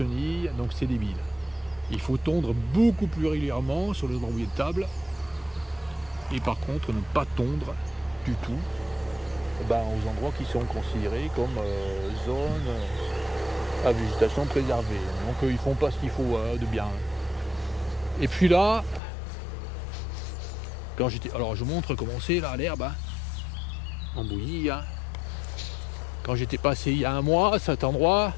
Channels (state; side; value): drops out; right; at 19.0 s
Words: Donc c'est débile. Il faut tondre beaucoup plus régulièrement sur les endroits où il y a de table. Et par contre, ne pas tondre du tout aux endroits qui sont considérés comme zone à végétation préservée. Donc ils font pas ce qu'il faut de bien. Et puis là, quand j'étais... Alors je montre comment c'est là l'herbe. Hein, en bouillie. Hein. Quand j'étais passé il y a un mois à cet endroit,